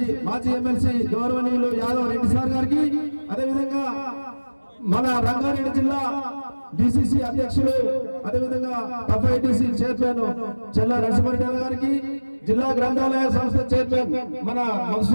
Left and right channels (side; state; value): both; inverted; correlation -1.00